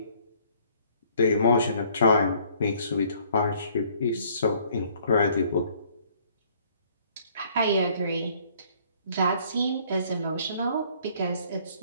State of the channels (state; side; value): inverted; both; correlation -0.60